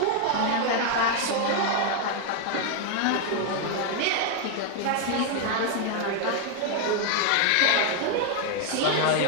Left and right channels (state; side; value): different; both; correlation 0.01